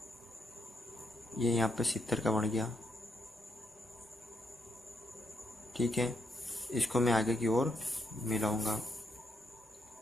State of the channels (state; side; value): normal; both; correlation 0.78